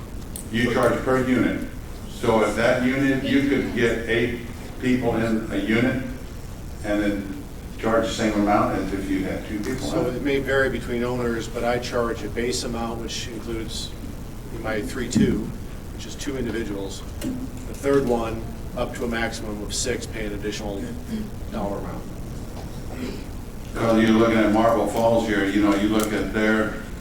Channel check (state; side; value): identical; both; correlation 1.00